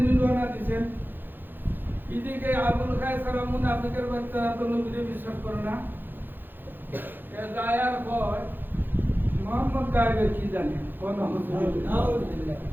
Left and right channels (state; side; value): late; left; 0.094 ms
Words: রওনা দিয়েছেন। এদিকে আবুল খায়সারা মুনাফিকের বাচ্চারা তো নবীকে বিশ্বাস করে না, এ দায়ার কয় মোহাম্মদ গায়েবের কি জানে, মোহাম্মদ